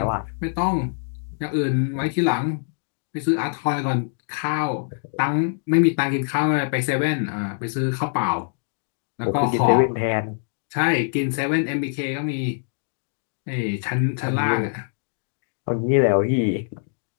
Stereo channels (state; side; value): silent; right; digital silence